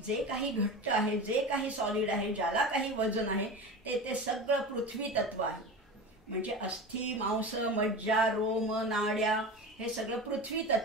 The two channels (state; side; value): normal; both; correlation 0.29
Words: काही घट्ट आहे, जे काही सॉलिड आहे, ज्याला काही वजन आहे, ते सगळं पृथ्वी तत्व आहे. म्हणजे अस्थि मांस मज्जा रोम नाड्या हे सगळं पृथ्वी